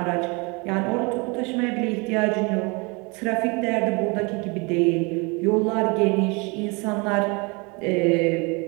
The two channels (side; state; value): left; quieter; 29.1 dB